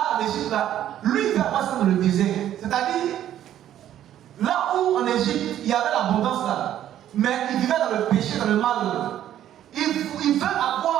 en Égypte, là, lui, il va passer dans le désert. C'est-à-dire, là où en Égypte, il y avait l'abondance là, mais il vivait dans le péché, dans le mal. Il veut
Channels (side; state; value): left; quieter; 11.6 dB